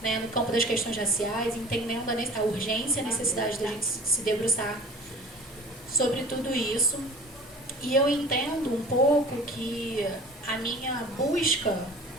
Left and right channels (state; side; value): normal; both; correlation 0.42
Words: no campo das questões raciais, entendendo a urgência e a necessidade da gente se debruçar sobre tudo isso. E eu entendo um pouco que a minha busca